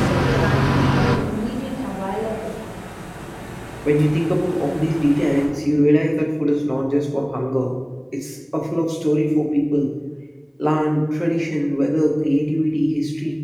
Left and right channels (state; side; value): identical; both; correlation 1.00